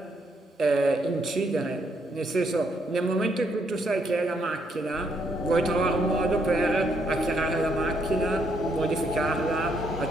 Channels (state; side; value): normal; both; correlation 0.74